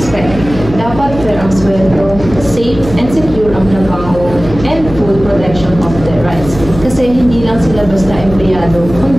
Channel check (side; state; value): left; noise; hum, 11 dB below the sound